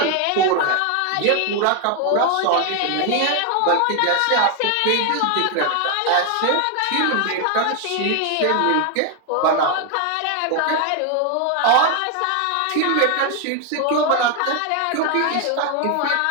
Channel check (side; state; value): both; different; correlation 0.01